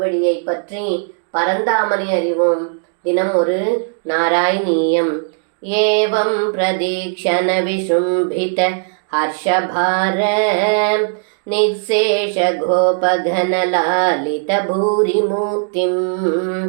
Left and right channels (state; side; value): silent; left; digital silence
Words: பற்றி பரந்தாமனை அறிவோம். தினம் ஒரு நாராயணீயம். ஏவம் பிரதீக்ஷண விசும்பித ஹர்ஷபார நிசேஷ கோபகனலாலித பூரிமூர்த்திம்